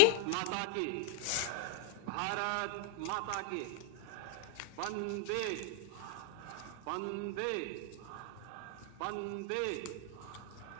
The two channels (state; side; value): different; both; correlation -0.01